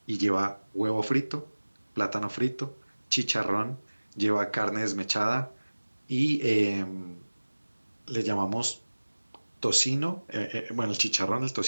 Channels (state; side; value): inverted; both; correlation -1.00